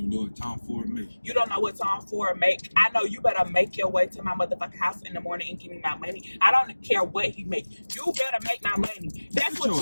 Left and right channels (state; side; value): inverted; both; correlation -1.00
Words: know what Tom Ford make. You don't know what Tom Ford make. I know you better make your way to my motherfucking house in the morning and give me my money. I don't care what he make. You better make my money. That's what